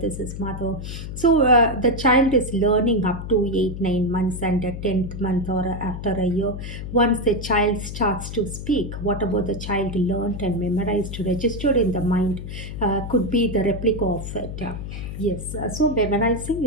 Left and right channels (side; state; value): left; noise; hum, 8 dB below the sound